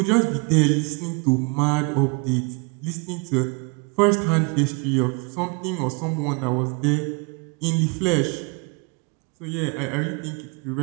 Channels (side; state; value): left; quieter; 32.0 dB